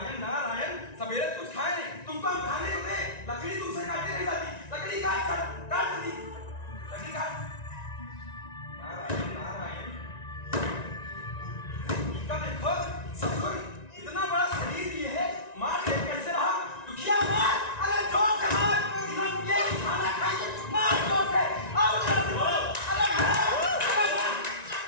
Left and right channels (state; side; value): late; right; 1.9 ms